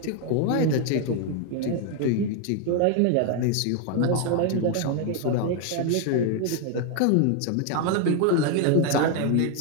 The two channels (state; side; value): different; both; correlation 0.01